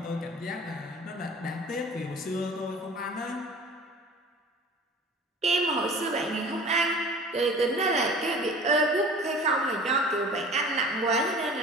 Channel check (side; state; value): both; normal; correlation 0.42